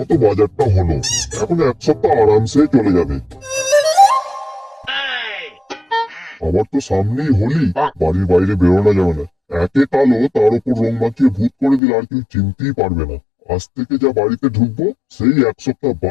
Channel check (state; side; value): drops out; right; at 11.8 s